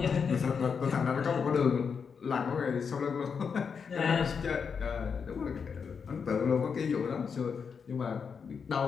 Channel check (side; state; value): right; quieter; 6.1 dB